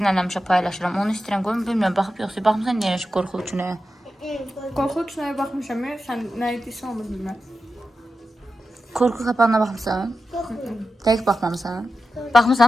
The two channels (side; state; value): both; normal; correlation 0.91